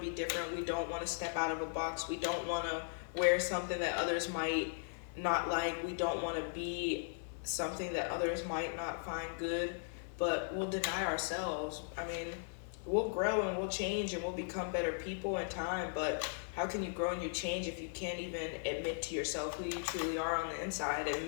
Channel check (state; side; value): silent; right; digital silence